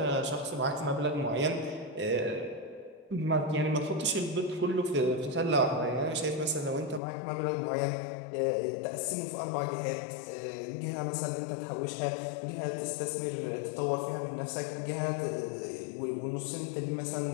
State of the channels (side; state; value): right; drops out; at 7.0 s